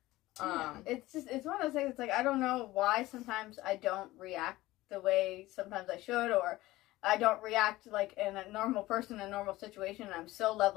It's one of those things. It's like, I don't know why sometimes I don't react the way sometimes I should, or I don't react like in a normal person in a normal situation. And I'm so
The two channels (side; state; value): right; quieter; 17.8 dB